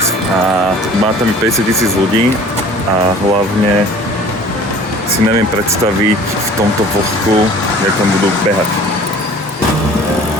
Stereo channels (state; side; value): normal; both; correlation 0.47